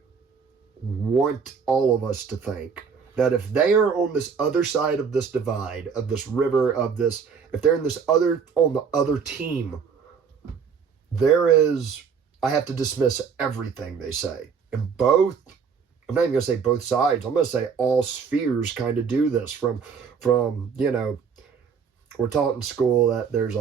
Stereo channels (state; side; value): quieter; left; 6.2 dB